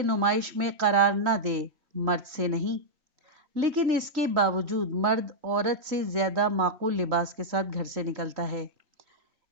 نمائش میں قرار نہ دے، مرد سے نہیں۔ لیکن اس کے باوجود مرد عورت سے زیادہ معقول لباس کے ساتھ گھر سے نکلتا ہے،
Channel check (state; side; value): late; left; 3.3 ms